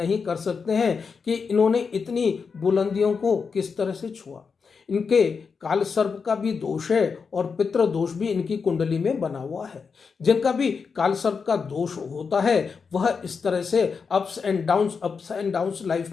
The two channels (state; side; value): quieter; right; 5.5 dB